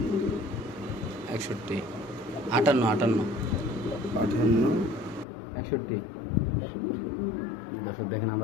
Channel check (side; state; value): right; drops out; at 5.2 s